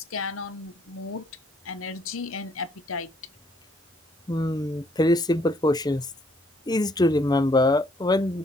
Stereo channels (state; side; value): normal; both; correlation 0.66